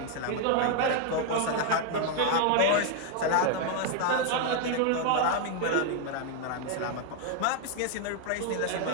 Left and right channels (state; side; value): different; both; correlation 0.00